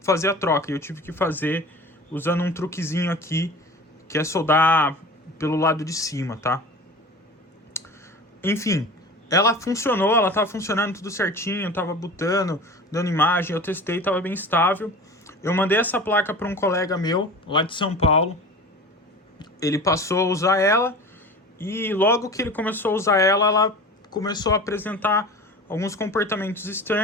a troca. Eu tive que fazer usando um truquezinho aqui, que é soldar pelo lado de cima, tá? Enfim, ela funcionou, ela tava funcionando tudo certinho, tava botando, dando imagem, eu testei, tava bem estável. Eu mandei essa placa para um colega meu, lá de São Paulo. Ele passou a usar ela e logo que ele começou a usar ela, ela começou a apresentar alguns comportamentos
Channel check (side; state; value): both; normal; correlation 0.37